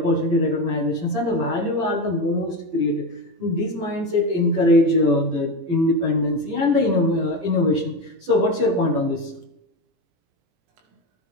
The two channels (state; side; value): late; left; 18 ms